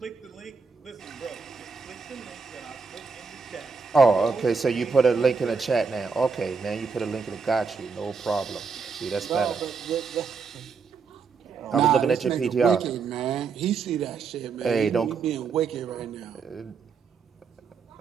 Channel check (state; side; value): quieter; left; 5.2 dB